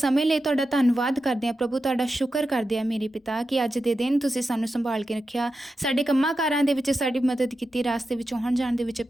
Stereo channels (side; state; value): both; normal; correlation 0.90